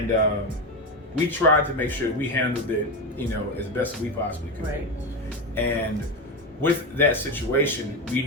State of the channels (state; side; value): normal; both; correlation 0.16